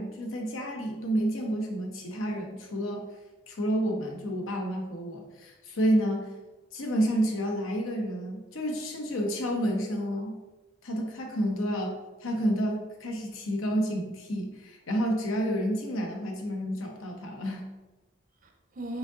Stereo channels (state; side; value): normal; both; correlation 0.73